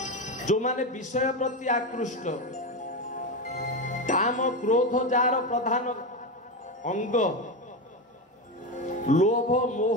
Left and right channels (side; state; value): both; normal; correlation 0.15